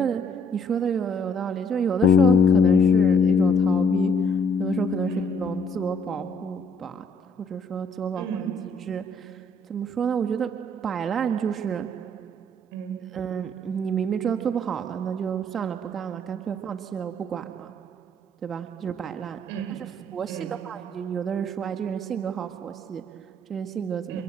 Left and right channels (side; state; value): both; normal; correlation 0.63